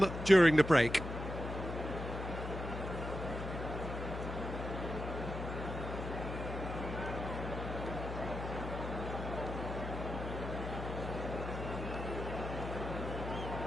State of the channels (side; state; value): left; noise; hum, 6 dB below the sound